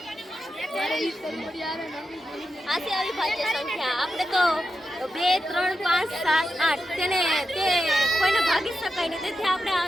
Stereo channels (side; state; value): both; normal; correlation 0.89